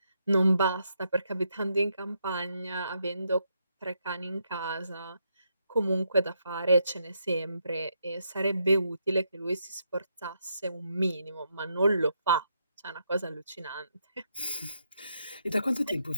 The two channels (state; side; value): inverted; both; correlation -0.79